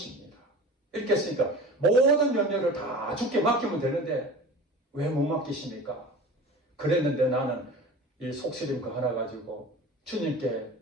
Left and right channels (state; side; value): normal; both; correlation 0.38